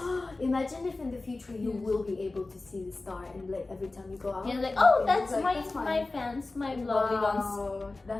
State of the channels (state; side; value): quieter; right; 3.3 dB